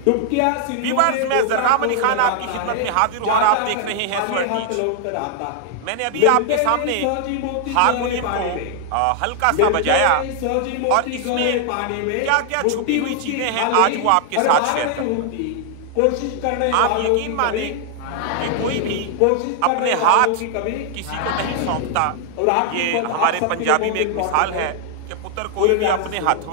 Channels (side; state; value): both; different; correlation 0.00